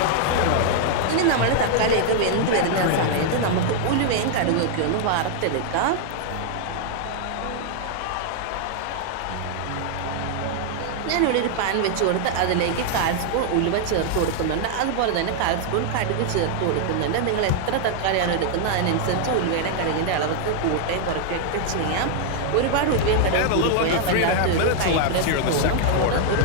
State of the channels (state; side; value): different; both; correlation 0.00